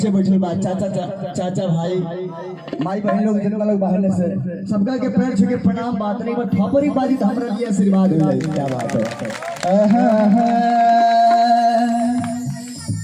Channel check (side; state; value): both; identical; correlation 1.00